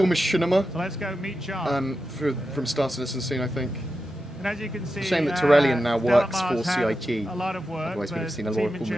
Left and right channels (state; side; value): normal; both; correlation 0.90